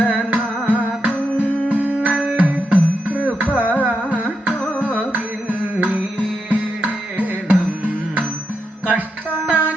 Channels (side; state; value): both; normal; correlation 0.84